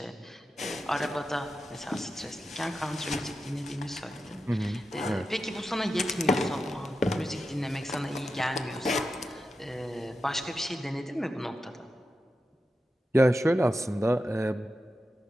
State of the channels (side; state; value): both; normal; correlation 0.90